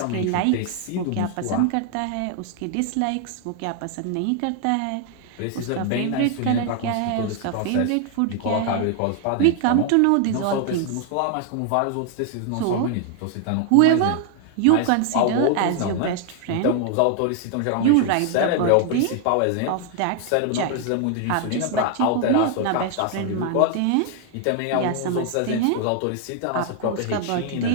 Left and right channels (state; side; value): different; both; correlation 0.00